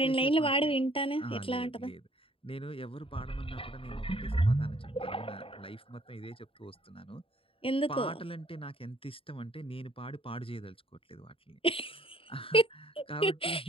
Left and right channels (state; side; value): late; right; 0.26 ms